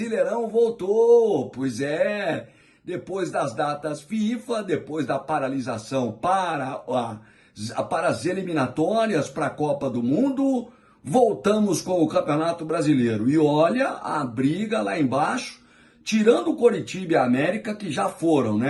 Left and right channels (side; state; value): both; identical; correlation 1.00